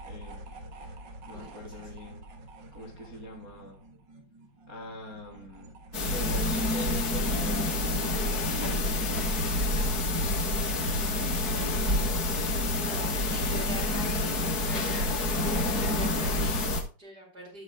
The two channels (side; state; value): left; late; 4.6 ms